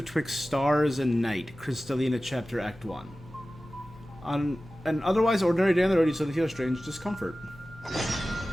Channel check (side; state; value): both; normal; correlation 0.96